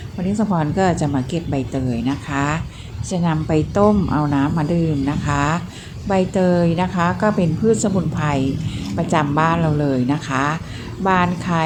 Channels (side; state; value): both; identical; correlation 1.00